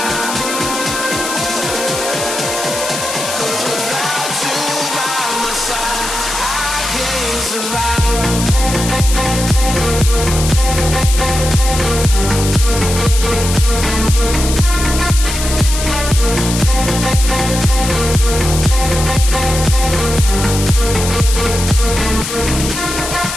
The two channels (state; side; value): noise; left; hiss, 5 dB below the sound